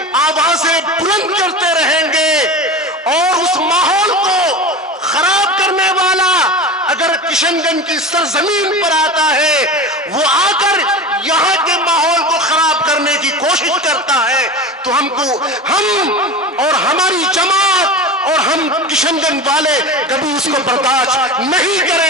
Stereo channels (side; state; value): both; normal; correlation 0.29